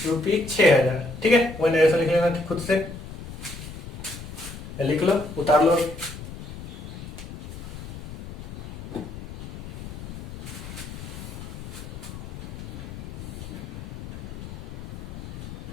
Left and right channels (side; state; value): left; noise; rumble, 10 dB below the sound